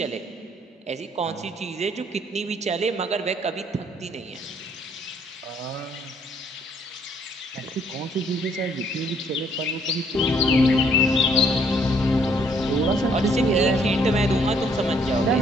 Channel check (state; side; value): normal; both; correlation 0.65